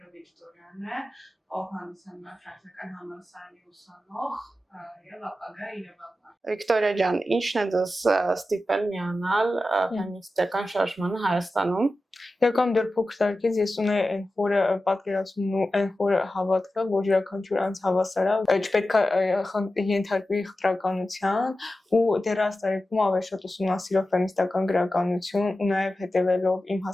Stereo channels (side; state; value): both; normal; correlation 0.93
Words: Վիկտորիան է, ով հանդիսանում է ֆրանսիական համալսարանի ուսանող եւ ապագա իրավաբան։ Վիկտորիա ջան, ինչն է ձեզ ստիպել միանալ ֆեմինիստական շարժմանը Հայաստանում։ Եկամ դեռ փոքր տարիքից ես ունեի այն խորը պատկերացումն ու այն խորը հավատքը, որ յուրաքանչյուր անձ հավասար է, չպետք է ենթարկվի խտրականության ու դեռ տարիքում ավելի շատ ուսումնասիրով ֆեմինիստական գրականություն ու նաև հետևելով իմ